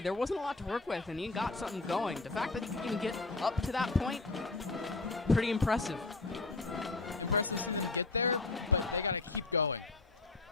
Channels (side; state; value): right; quieter; 3.4 dB